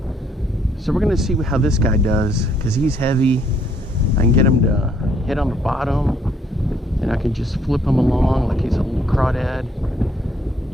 So we're going to see how this guy does, because he's heavy. I can get him to hit on the bottom, and I can just flip him along like he's a little crawdad.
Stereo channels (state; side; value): normal; both; correlation 0.67